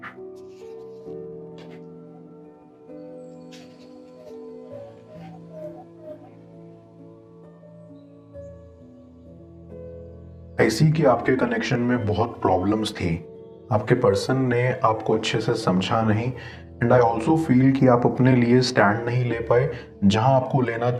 ऐसी कि आपके कनेक्शन में बहुत प्रॉब्लम्स थी। आपके पर्सन ने आपको अच्छे से समझा नहीं एंड आई ऑल्सो फील कि आप अपने लिए स्टैंड नहीं ले पाए जहां आपको लेना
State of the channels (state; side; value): identical; both; correlation 1.00